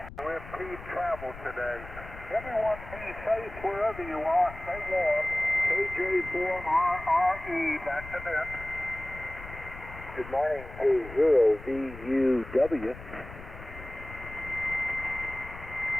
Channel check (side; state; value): left; noise; rumble, 14 dB below the sound